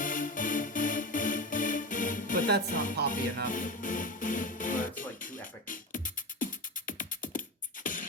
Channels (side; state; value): both; normal; correlation 0.23